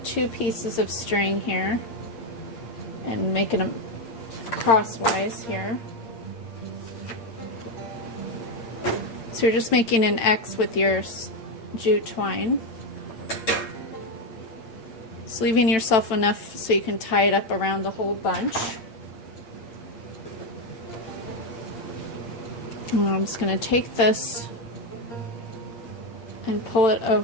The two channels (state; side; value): late; right; 9.0 ms